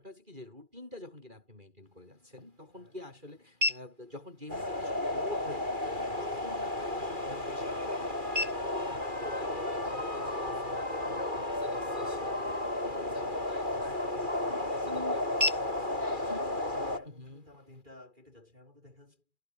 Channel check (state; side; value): late; left; 2.4 ms